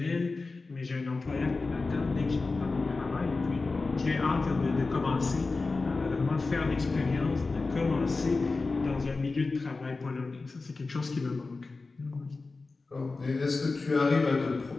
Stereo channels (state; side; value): quieter; right; 3.8 dB